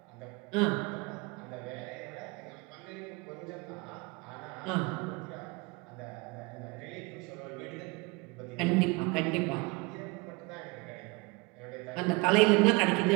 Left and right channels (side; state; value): left; quieter; 26.2 dB